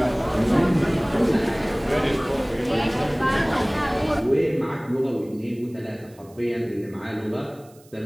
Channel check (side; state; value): right; noise; hiss, 28 dB below the sound